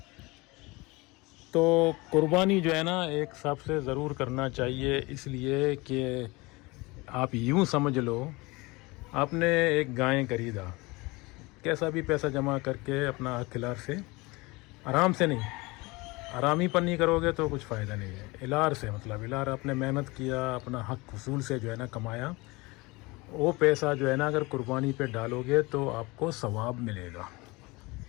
تو قربانی جو ہے نا ایک سب سے ضرور کرنا چاہیے، اس لیے کہ آپ یوں سمجھ لو آپ نے ایک گائیں خریدا، کیسا بھی پیسہ جمع کر کے اپنا اخلار سے، آرام سے نہیں، آرامی پر نہیں کرو گے تو کچھ فائدہ نہیں ہے۔ الار سے مطلب الار آپ نے محنت کیا، اپنا حق حصول سے جو ہے نا کمایا، وہ پیسہ جو ہے نا اگر قربانی پہ ڈالو گے تو آپ کو ثواب ملے گا۔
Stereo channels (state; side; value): quieter; right; 23.9 dB